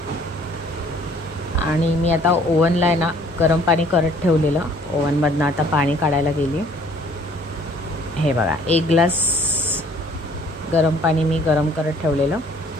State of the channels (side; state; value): both; normal; correlation 0.57